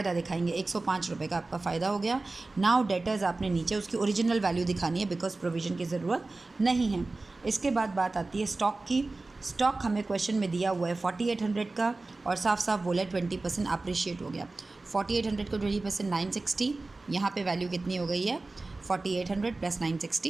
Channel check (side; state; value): left; quieter; 3.3 dB